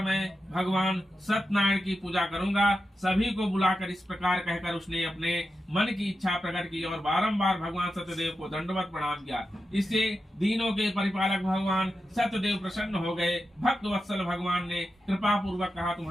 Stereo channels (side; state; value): both; normal; correlation 0.89